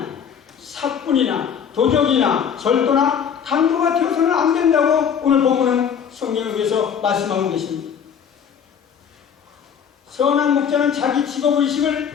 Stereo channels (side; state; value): right; quieter; 7.7 dB